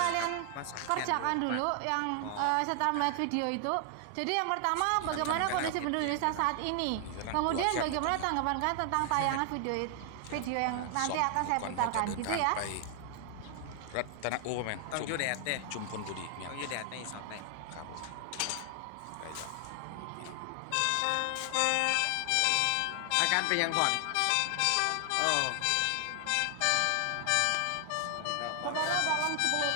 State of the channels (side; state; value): both; different; correlation 0.00